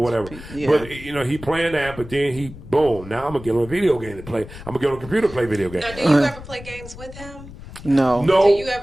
whatever. But he playing that, but then now I'm gonna get on a video game to play. I'm gonna get on a computer to play video games. Now, do you ever play games with him? No. Do you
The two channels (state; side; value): noise; left; rumble, 15 dB below the sound